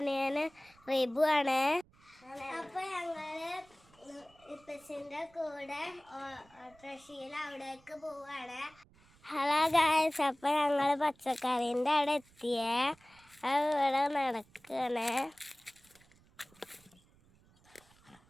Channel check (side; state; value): right; noise; rumble, 29 dB below the sound